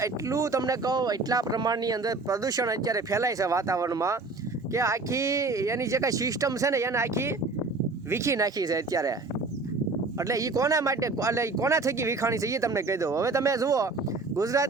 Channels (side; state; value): left; quieter; 3.6 dB